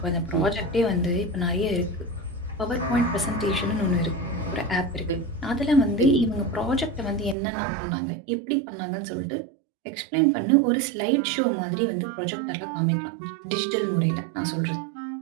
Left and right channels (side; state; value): left; drops out; at 7.4 s